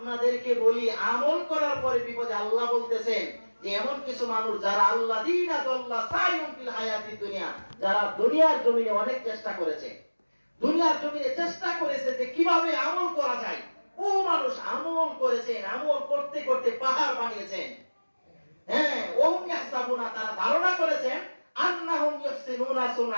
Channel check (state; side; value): inverted; both; correlation -1.00